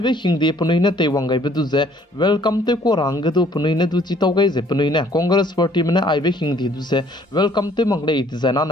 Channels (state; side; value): normal; both; correlation 0.60